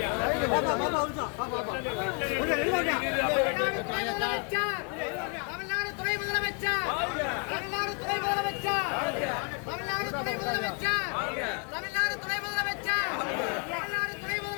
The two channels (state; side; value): quieter; right; 37.3 dB